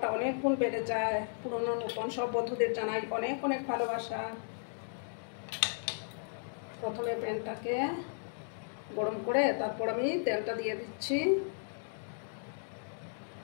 অনেক গুণ বেড়ে যায়। পুরনো নতুন সব বন্ধুদের জানাই অনেক অনেক ভালোবাসা। প্রথমে প্যানটাকে গরম করে তারপর আমি তেলটা দিয়ে দিচ্ছি।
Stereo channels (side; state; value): right; silent; digital silence